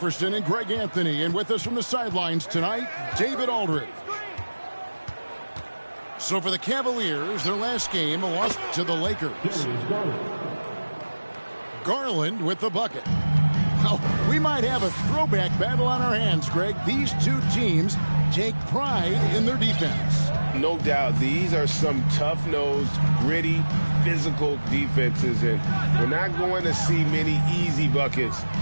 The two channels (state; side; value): inverted; both; correlation -1.00